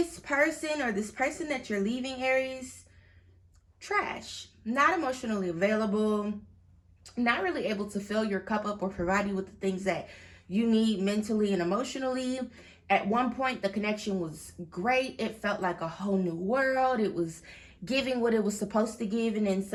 person or this person that you're leaving, Aries, trash, not emotionally available, not really able to fill your cup up or provide you with the things that you need mentally and emotionally. At one point, the connection was great. It felt like a whole new world. It was giving what it was supposed to give, and then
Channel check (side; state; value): both; identical; correlation 1.00